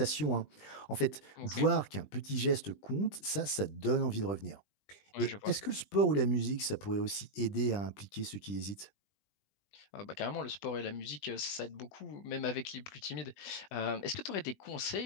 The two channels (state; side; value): late; right; 20 ms